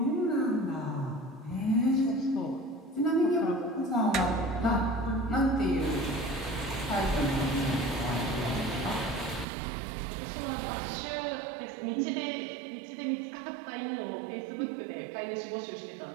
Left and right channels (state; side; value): drops out; left; at 9.5 s